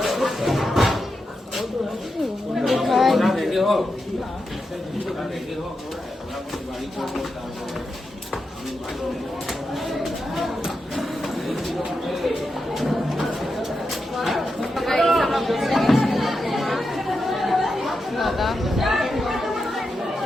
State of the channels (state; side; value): normal; both; correlation 0.88